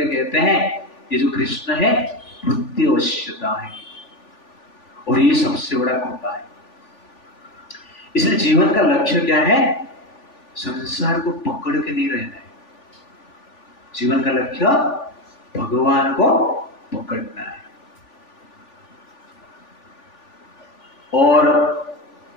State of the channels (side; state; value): right; late; 3.4 ms